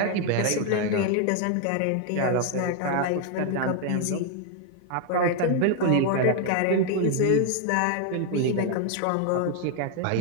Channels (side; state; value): both; different; correlation 0.01